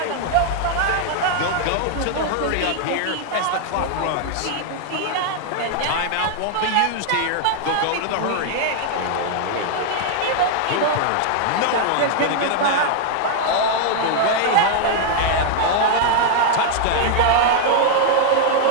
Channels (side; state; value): both; different; correlation 0.00